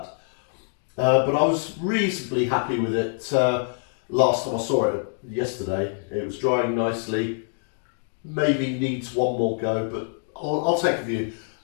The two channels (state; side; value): silent; right; digital silence